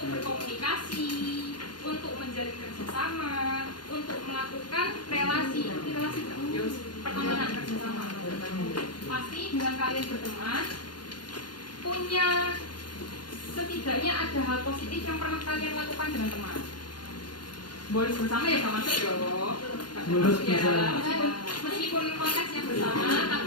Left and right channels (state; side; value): late; right; 0.71 ms